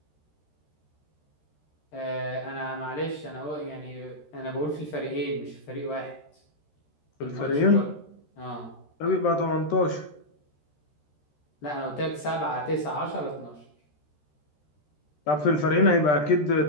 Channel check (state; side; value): late; right; 13 ms